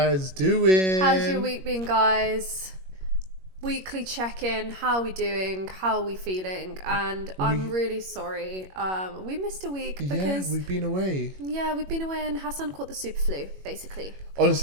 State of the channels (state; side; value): late; left; 21 ms